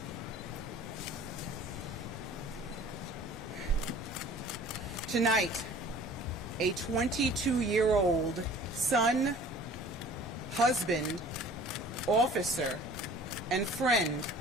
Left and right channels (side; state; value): both; normal; correlation 0.48